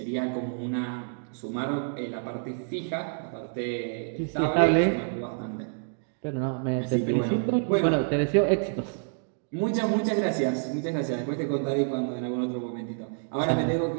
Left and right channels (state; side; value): silent; left; digital silence